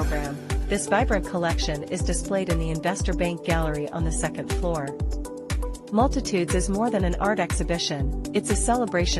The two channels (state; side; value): identical; both; correlation 1.00